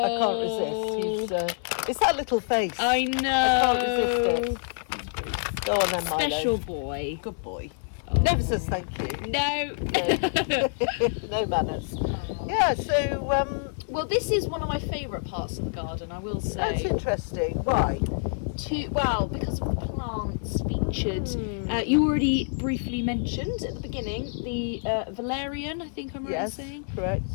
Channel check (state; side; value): silent; right; digital silence